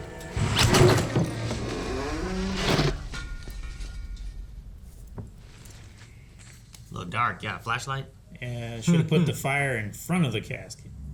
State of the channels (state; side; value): identical; both; correlation 1.00